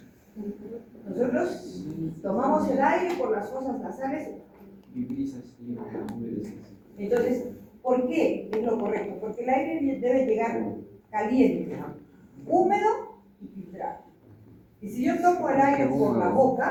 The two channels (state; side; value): identical; both; correlation 1.00